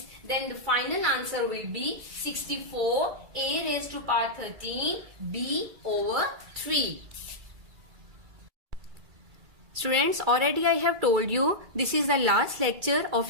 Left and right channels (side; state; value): left; late; 2.3 ms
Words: then the final answer will be 64 a raised to power 13 b over 3. Students, already I have told you this is the last lecture